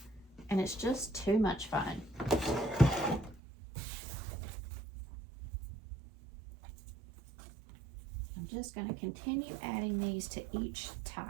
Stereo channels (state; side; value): drops out; left; at 3.4 s